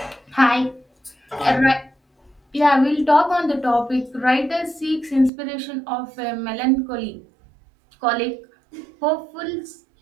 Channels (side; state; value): left; drops out; at 5.3 s